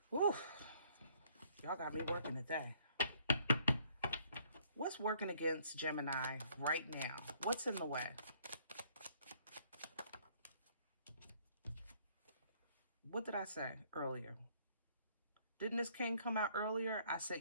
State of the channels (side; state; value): both; inverted; correlation -0.63